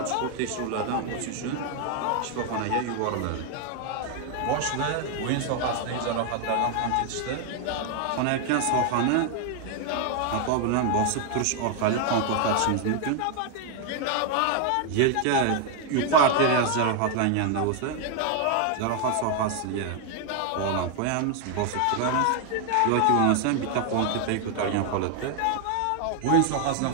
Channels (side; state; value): both; different; correlation 0.01